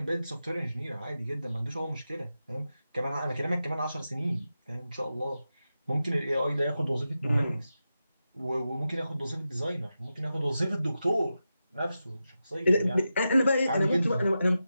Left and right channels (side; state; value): both; inverted; correlation -0.91